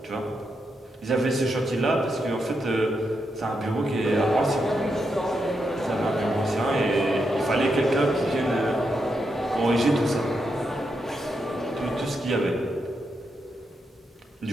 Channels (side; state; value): both; normal; correlation 0.83